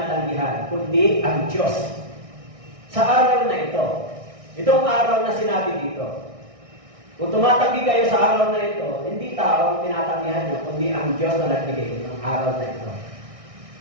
kundi ang Diyos. Sa araw na ito, itong araw na sinabi dito, kung tumatanggi kayo sa araw na ito, hindi tao ang tinatanggihan nyo, kundi ang Diyos na nagbigay ng araw na ito.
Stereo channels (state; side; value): late; left; 1.6 ms